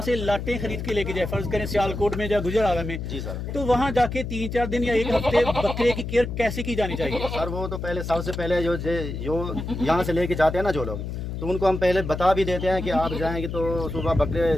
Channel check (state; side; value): noise; left; hum, 5 dB below the sound